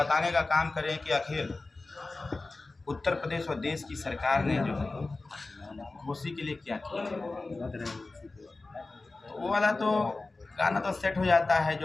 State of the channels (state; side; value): quieter; right; 3.4 dB